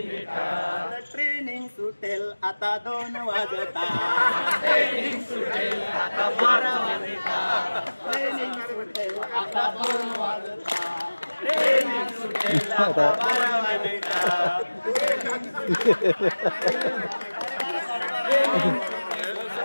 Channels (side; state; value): both; inverted; correlation -1.00